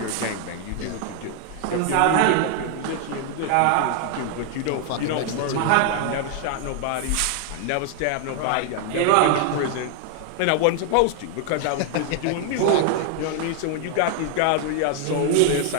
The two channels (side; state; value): both; different; correlation 0.00